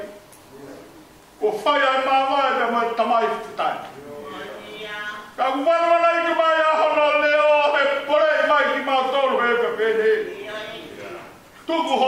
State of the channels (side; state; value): both; identical; correlation 1.00